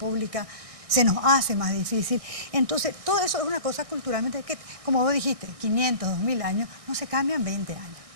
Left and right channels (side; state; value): left; late; 1.6 ms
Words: se nos hace más difícil. Entonces, todo eso es una cosa culturalmente que, como vos dijiste, 500, 2000 años, no se cambian 20 años.